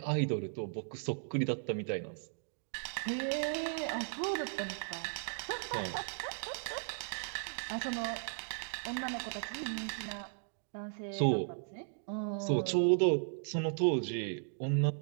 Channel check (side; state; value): left; silent; digital silence